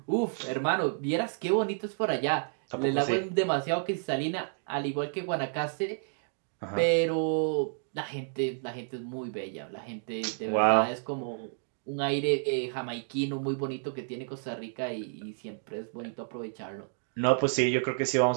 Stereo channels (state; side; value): silent; left; digital silence